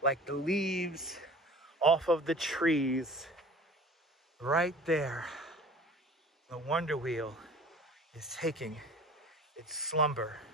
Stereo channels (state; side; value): normal; both; correlation 0.44